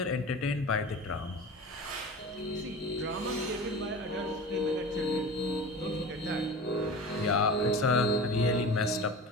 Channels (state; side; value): normal; both; correlation 0.34